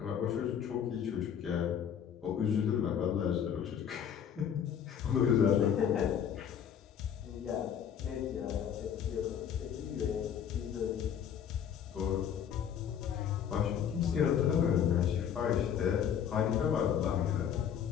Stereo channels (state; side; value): quieter; right; 8.6 dB